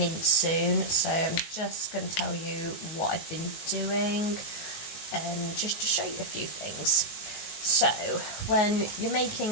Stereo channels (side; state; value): right; late; 19 ms